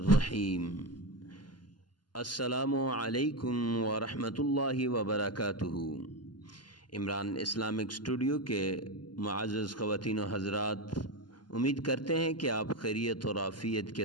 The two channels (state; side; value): late; right; 0.71 ms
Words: السلام علیکم ورحمۃ اللہ وبرکاتہ۔ عمران اسلامک اسٹوڈیو کے معزز خواتین و حضرات، امید کرتے ہیں کہ آپ خیریت اور عافیت کے